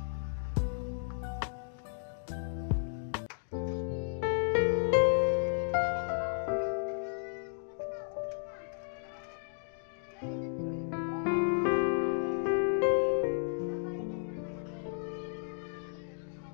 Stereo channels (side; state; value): right; silent; digital silence